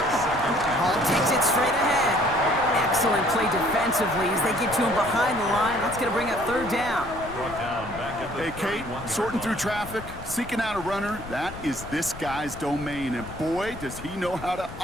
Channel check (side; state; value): left; noise; rumble, 13 dB below the sound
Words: Hall takes it straight ahead. Excellent play defensively as they get to him behind the line. That's going to bring up third down. Hey, Kate, sorting through traffic, seeking out a runner, that is this guy's domain. And boy, does he know how to